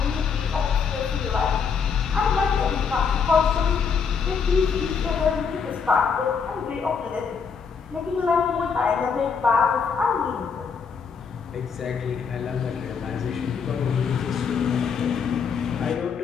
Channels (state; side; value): quieter; right; 6.0 dB